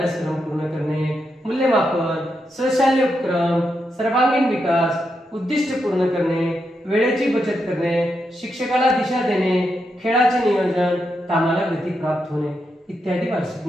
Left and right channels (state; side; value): normal; both; correlation 0.84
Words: पूर्ण करणे, मूल्यमापन, स्वशाल्य उपक्रम, सर्वांगीण विकास, उद्दिष्ट पूर्ण करणे, वेळेची बचत करणे, शिक्षकाला दिशा देणे, खेळाचे नियोजन, कामाला गती प्राप्त होणे इत्यादी वार्षिक